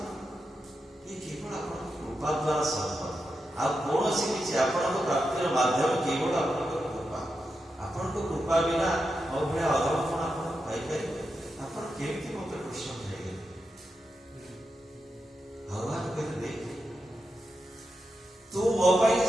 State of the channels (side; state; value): both; normal; correlation 0.88